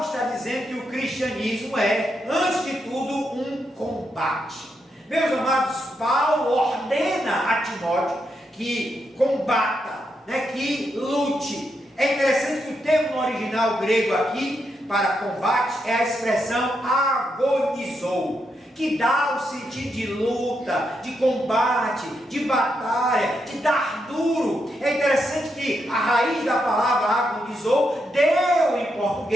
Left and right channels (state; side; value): normal; both; correlation 0.82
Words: está dizendo que o cristianismo é, antes de tudo, um combate. Meus amados, Paulo ordena a Timóteo que combata, que lute. É interessante que o termo no original grego aqui, para combate, é a expressão agonizou, que dá o sentido de luta, de combate, de batalha, de dar duro. É interessante que a raiz da palavra agonizou deu em